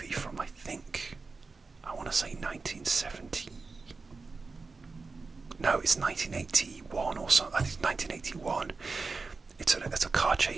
from, I think, I want to say 1970. No, it's 1981 or something. I think it's 1981. It's a car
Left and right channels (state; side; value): quieter; left; 4.2 dB